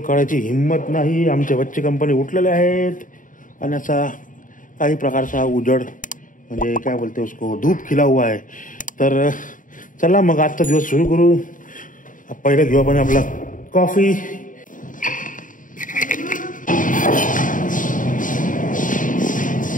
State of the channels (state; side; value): late; right; 0.38 ms